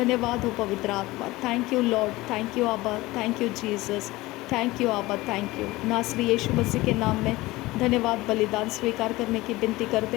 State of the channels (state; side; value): quieter; right; 19.7 dB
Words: हो पवित्र आत्मा। Thank you Lord, thank you आबा, thank you Jesus, thank you आबा, थैंक यू। नासरी यीशु मसीह के नाम में धन्यवाद बलिदान स्वीकार करने की विनती करते